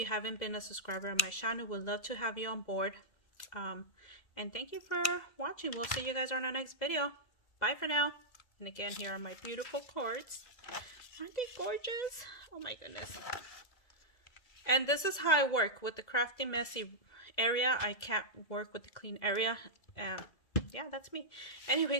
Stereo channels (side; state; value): right; late; 2.0 ms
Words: haven't been a subscriber on my channel, we'd love to have you on board. And thank you for watching. We'll see you guys on our next video. Bye for now. And again, here are my beautiful cards. Aren't they gorgeous? Oh my goodness. And this is how I work with the crafty messy area. I can't work with the clean area. And yeah, that's me.